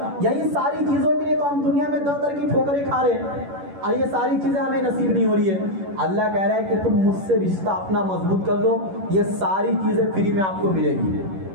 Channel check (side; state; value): left; late; 11 ms